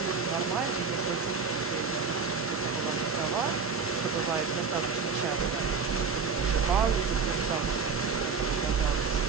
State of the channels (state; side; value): quieter; left; 5.2 dB